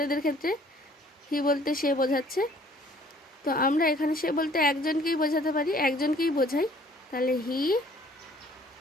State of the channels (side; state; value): both; normal; correlation 0.57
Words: ক্ষেত্রে হি বলতে সে বোঝাচ্ছে, তো আমরা এখানে সে বলতে একজনকেই বোঝাতে পারি, একজনকেই বোঝাই, তাহলে হি